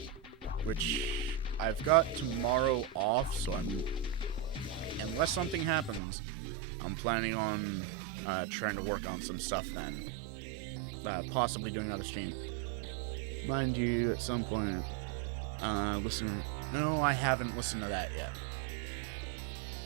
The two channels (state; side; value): drops out; left; at 6.0 s